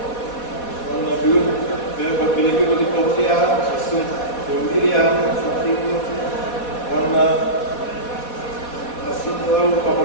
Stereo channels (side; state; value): right; late; 4.1 ms